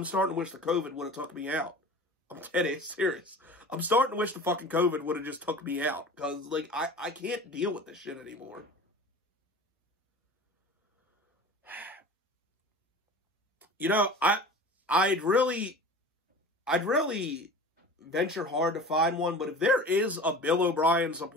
starting to wish the COVID would have took me out. I'm dead serious. I'm starting to wish the fucking COVID would have just took me out. Because, like, I can't deal with this shit anymore. You know, I'd really venture hard to find one, but if there is a Bill O'Brien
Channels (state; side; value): normal; both; correlation 0.37